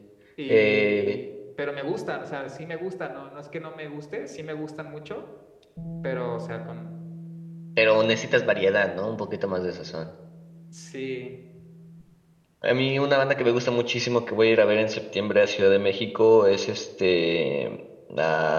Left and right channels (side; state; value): both; identical; correlation 1.00